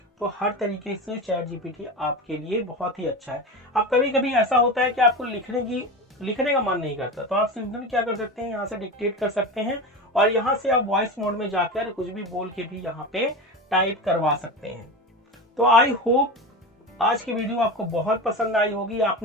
तो हर तरीके से चैट जीपीटी आपके लिए बहुत ही अच्छा है। अब कभी कभी ऐसा होता है कि आपको लिखने का मन नहीं करता, तो आप सिंपली क्या कर सकते हैं, यहाँ से डिक्टेट कर सकते हैं और यहाँ से आप वॉइस मोड में जाकर कुछ भी बोल के भी यहाँ पे टाइप करवा सकते हैं। तो आई होप आज की वीडियो आपको बहुत पसंद आई होगी,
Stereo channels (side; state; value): both; normal; correlation 0.25